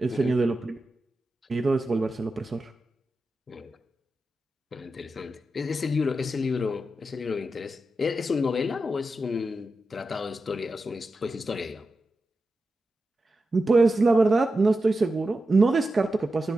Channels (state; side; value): normal; both; correlation 0.90